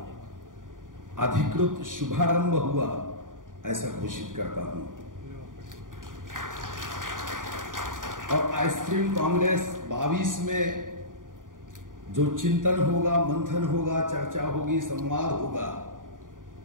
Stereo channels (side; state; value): left; late; 0.89 ms